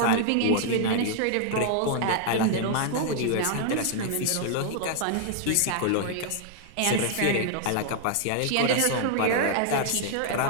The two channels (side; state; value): both; different; correlation -0.01